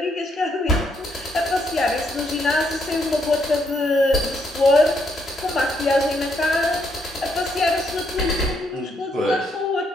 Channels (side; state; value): both; normal; correlation 0.74